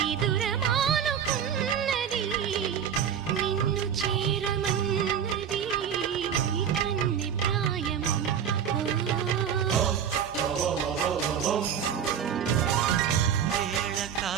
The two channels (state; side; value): quieter; left; 8.3 dB